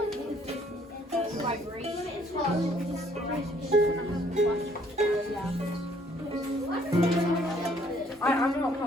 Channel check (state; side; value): normal; both; correlation 0.63